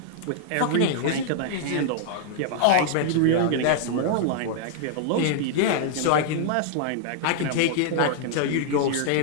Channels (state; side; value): different; both; correlation -0.01